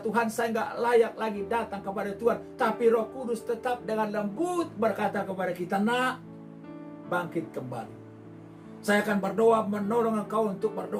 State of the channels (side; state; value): both; identical; correlation 1.00